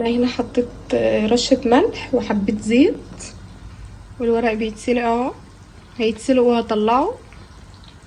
هنا حطيت رشه ملح وحبه زيت، والورق بيتسلق اهو، هيتسلق وهطلعه.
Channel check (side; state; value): both; identical; correlation 1.00